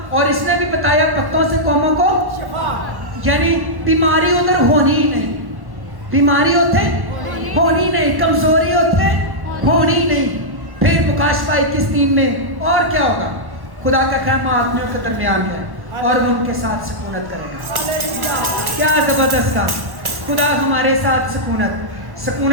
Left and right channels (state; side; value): late; left; 1.1 ms